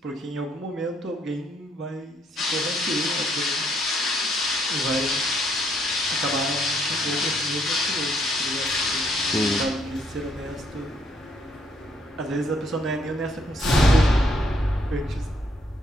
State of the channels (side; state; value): both; normal; correlation 0.70